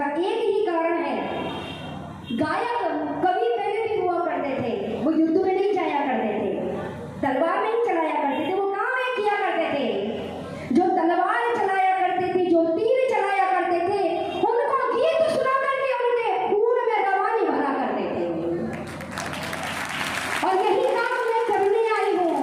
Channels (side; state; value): both; identical; correlation 1.00